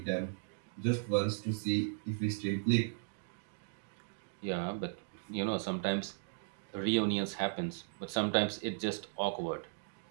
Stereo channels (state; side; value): silent; left; digital silence